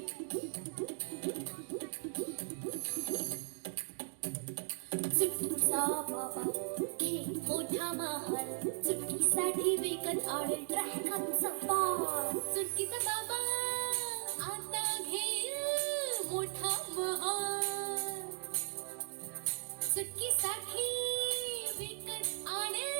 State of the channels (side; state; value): left; silent; digital silence